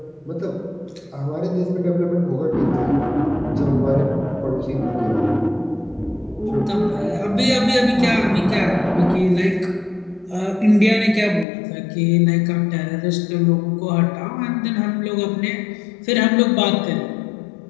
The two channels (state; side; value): drops out; right; at 11.5 s